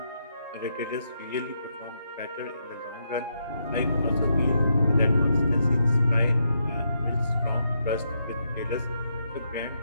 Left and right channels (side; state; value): both; inverted; correlation -0.80